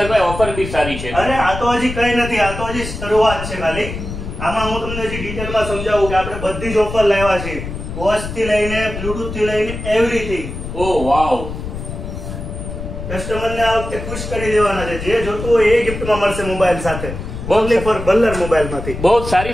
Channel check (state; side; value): noise; left; rumble, 8 dB below the sound